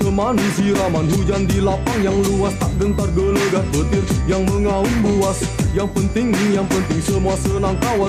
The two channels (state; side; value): identical; both; correlation 1.00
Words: siraman hujan di lapang yang luas, tak gentar gelegar petir yang mengaum buas. Yang penting semua senang kawan